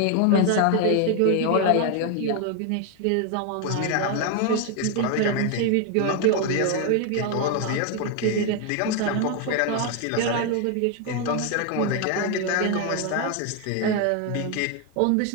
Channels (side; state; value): both; different; correlation 0.01